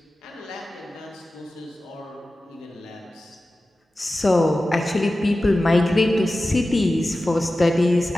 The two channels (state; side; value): normal; both; correlation 0.95